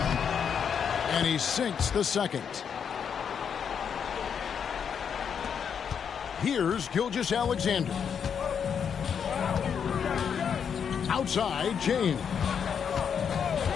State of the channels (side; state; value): right; quieter; 7.3 dB